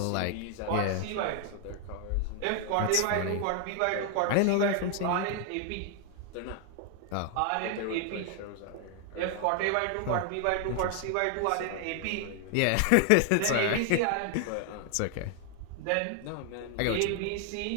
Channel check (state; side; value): different; both; correlation 0.00